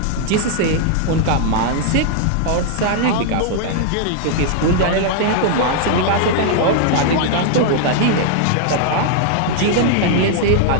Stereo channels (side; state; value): both; different; correlation 0.00